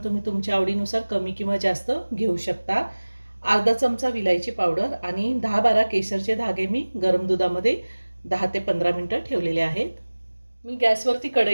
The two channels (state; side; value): inverted; both; correlation -1.00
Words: तुम्ही तुमच्या आवडीनुसार कमी किंवा जास्त घेऊ शकता. अर्धा चमचा विलायची पावडर आणि 10-12 केशरचे धागे मी गरम दुधामध्ये 10 ते 15 मिनिटं ठेवलेले आहेत. मी गॅसवरती